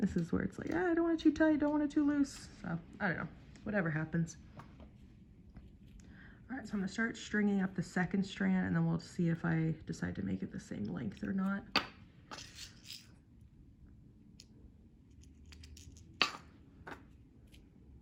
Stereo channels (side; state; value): both; identical; correlation 1.00